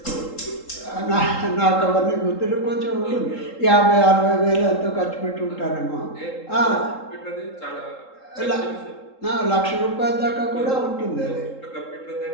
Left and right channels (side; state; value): right; late; 3.8 ms